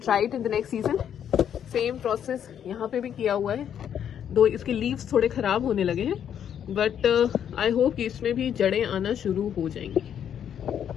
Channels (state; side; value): quieter; right; 9.1 dB